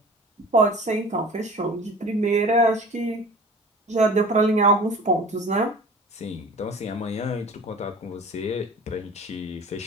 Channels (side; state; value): both; normal; correlation 0.42